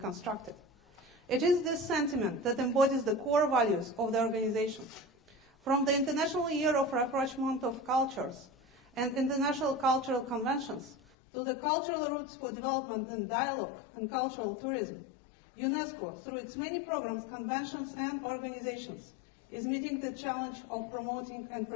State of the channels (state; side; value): drops out; right; at 11.0 s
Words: It is this sentiment that embodies the core values of the organization. From the International Year of Rapprochement of Cultures and International Cultural Conventions to the Cultural Routes for Development and Dialogue and Cultural Tourism, UNESCO, through its many programs, conventions, and organizations, is meeting the challenge of promoting and